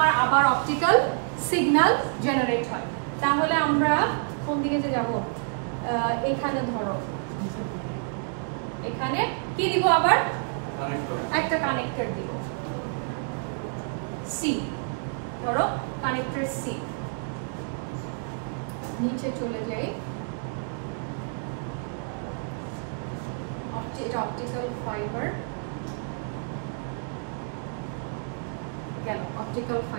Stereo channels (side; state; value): left; silent; 59 dB below the other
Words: আবার অপটিক্যাল সিগন্যাল জেনারেট হয়। তাহলে আমরা কোন দিকে যে যাব, এখানে ধরো, এখানে কি দিব আবার? একটা কানেক্টর দিব সি, ধরো কানেক্টর সি। নিচে চলে যাই, এটা অপটিক্যাল ফাইবার গেল, অপটিক্যাল